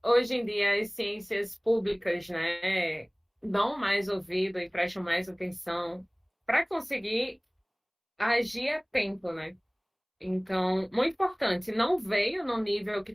hoje em dia as ciências públicas, né, dão mais ouvido e prestam mais atenção para conseguir agir a tempo, né? Então, muito importante, não veio no nível que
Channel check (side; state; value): both; identical; correlation 1.00